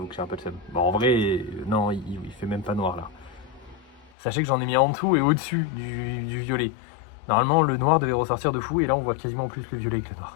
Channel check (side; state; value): right; drops out; at 4.1 s